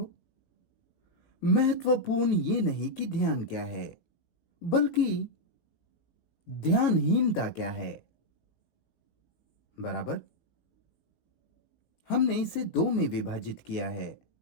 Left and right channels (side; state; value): right; late; 18 ms